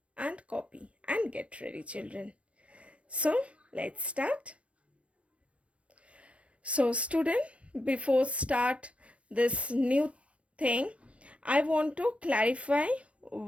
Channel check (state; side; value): late; left; 0.062 ms